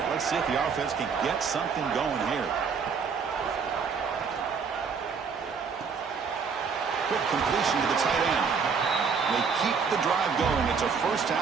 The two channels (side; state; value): left; quieter; 5.8 dB